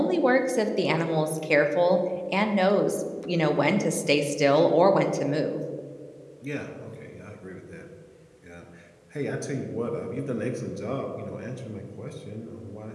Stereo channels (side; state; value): both; identical; correlation 1.00